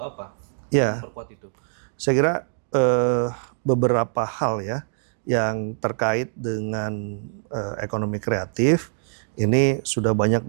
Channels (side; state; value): left; silent; digital silence